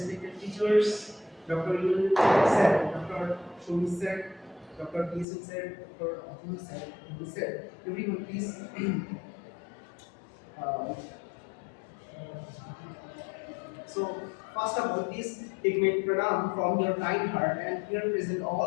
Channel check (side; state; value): right; drops out; at 5.2 s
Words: teachers, Dr. Yul sir, Dr. Shomi sir, Dr. Kisun sir, Dr. Atul sir, everyone please. uh, So, first of all, please take my pranam from your kind heart and here present all